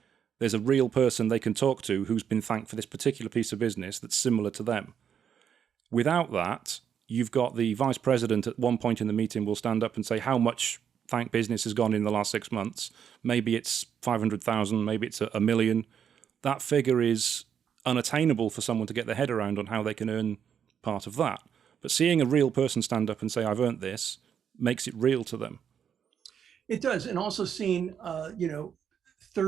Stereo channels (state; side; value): quieter; left; 8.1 dB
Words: There's a real person they can talk to who's been thanked for this particular piece of business that's similar to them. Without that, you've got the vice president at one point in the meeting will stand up and say how much thank business has gone in the last 6 months. Maybe it's 500,000, maybe it's a million. That figure is unattainable for someone to get their head around on how they can earn part of that. But seeing a real person stand up and say, I've earned this, makes it real to them. It does. And also seeing,